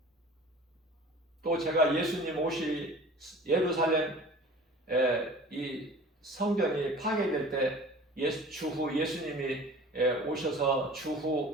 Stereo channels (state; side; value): normal; both; correlation 0.43